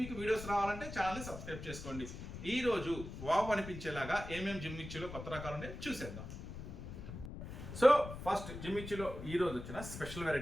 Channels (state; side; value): noise; left; rumble, 9 dB below the sound